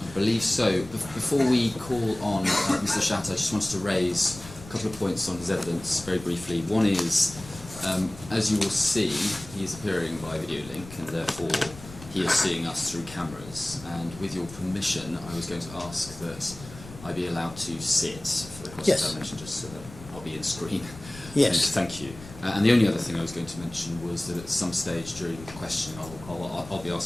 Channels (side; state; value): left; noise; rumble, 16 dB below the sound